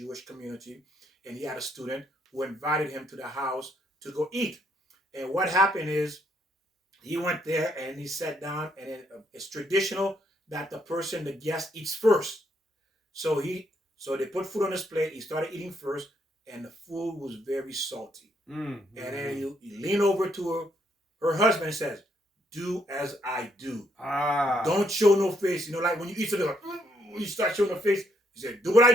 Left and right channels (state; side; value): normal; both; correlation 0.73